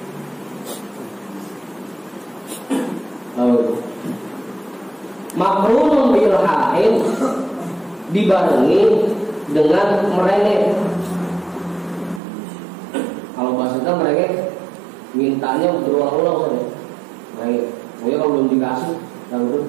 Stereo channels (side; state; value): left; drops out; at 12.2 s